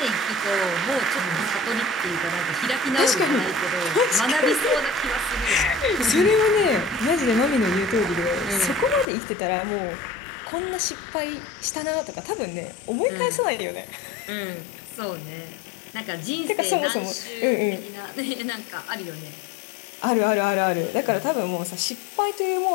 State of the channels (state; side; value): drops out; right; at 9.1 s